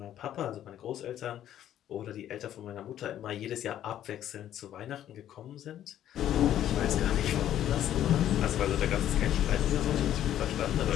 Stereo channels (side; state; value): right; quieter; 11.5 dB